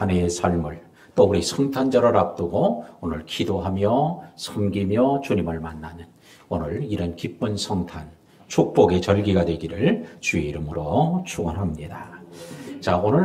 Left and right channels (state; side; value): identical; both; correlation 1.00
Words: 해의 삶을 또 우리 성탄절을 앞두고 오늘 기도하며 섬기며 주님을 만나는 오늘 이런 기쁜 성탄 축복의 절기가 되기를 주의 이름으로 축원합니다. 자,